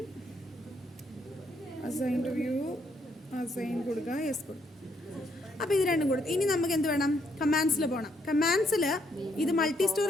assign to view, assign കൊടുക്കുക, യെസ് കൊടുക്കുക. അപ്പോൾ ഇത് രണ്ടും കൊടുത്തു. ഇനി നമുക്ക് എന്ത് വേണം? കമാൻഡ്സിൽ പോകണം. കമാൻഡ്സിൽ ഇത് മൾട്ടി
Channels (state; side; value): normal; both; correlation 0.73